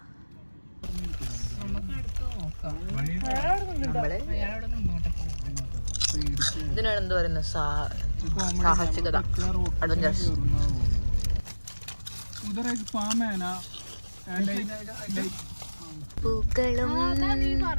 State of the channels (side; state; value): both; inverted; correlation -1.00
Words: ഇതിനാണ് എന്ത് പറയുന്നത്? സാഹസികത, അഡ്വഞ്ചറസ്. പൂക്കളും